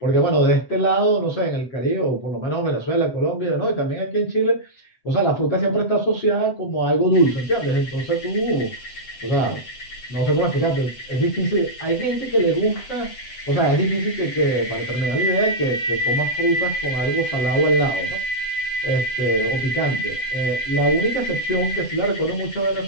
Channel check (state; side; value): late; right; 7.9 ms